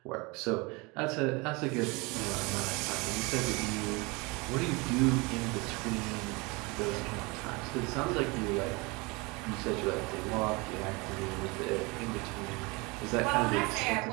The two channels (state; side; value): quieter; left; 26.7 dB